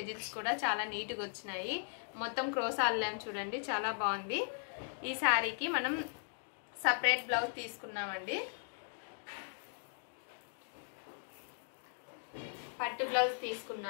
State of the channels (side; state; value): right; silent; digital silence